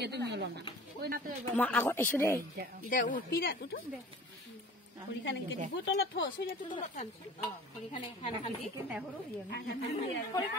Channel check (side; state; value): both; normal; correlation 0.43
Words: মা আগত এসো দে দে উঠপিরা উঠো দে হরিখানে কে দিব তলত থ সইয়া তো তলত খান হরিখানে খানা খান দি কেন হরো